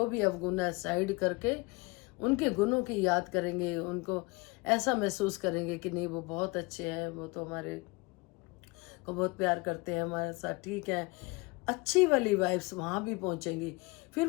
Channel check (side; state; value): right; quieter; 25.9 dB